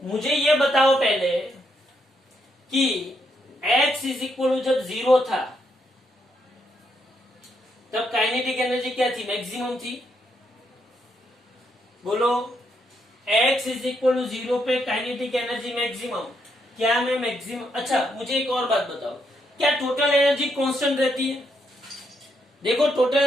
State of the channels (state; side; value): normal; both; correlation 0.77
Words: मुझे ये बताओ पहले कि x इज इक्वल जब 0 था तब काइनेटिक एनर्जी क्या थी? मैक्सिमम थी। बोलो, x इज इक्वल टू 0 पे काइनेटिक एनर्जी मैक्सिमम। क्या मैं मैक्सिमम? अच्छा, मुझे एक और बात बताओ, क्या टोटल एनर्जी कांस्टेंट रहती है? देखो, टोटल